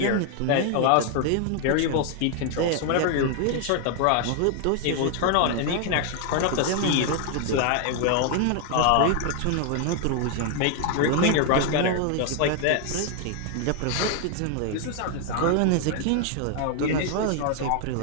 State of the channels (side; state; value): both; different; correlation 0.00